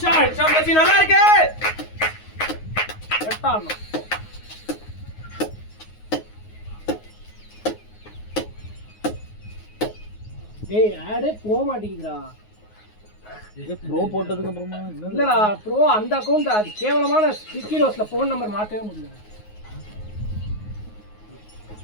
சம்பத்தி நல்லா இருக்கு கட்டாணும் டேய் ஆடே போக மாட்டேங்குதுடா இது ப்ரோ போட்டதுக்கு அப்புறமா இல்லடா ப்ரோ அந்த அக்கௌண்ட் அது கேவலமான ஸ்டிக்கி நோட்ஸ்ல ஃபோன் நம்பர் மாத்தவே முடியல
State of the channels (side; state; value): right; late; 9.5 ms